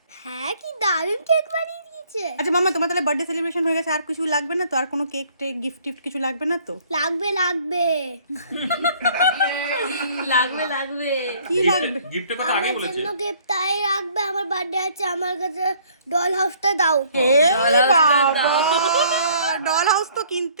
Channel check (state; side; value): inverted; both; correlation -0.59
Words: হ্যাঁ কি দারুণ কেক বানিয়ে দিয়েছে। আচ্ছা মামা তোমার তাহলে বার্থডে সেলিব্রেশন হয়ে গেছে, আর কিছু লাগবে না তো? আর কোনো কেক টেক গিফট টিফট কিছু লাগবে না তো? লাগবে লাগবে লাগবে লাগবে। কি লাগবে? গিফটের কথা আগেই আমার বলেছে জন্য গিফট তাই রাখবে। আমার বার্থডে আছে, আমার কাছে ডল হাউসটা দাও। এ বাবা ডল হাউস তো